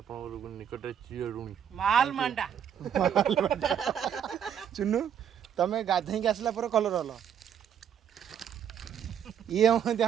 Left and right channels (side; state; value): left; quieter; 8.8 dB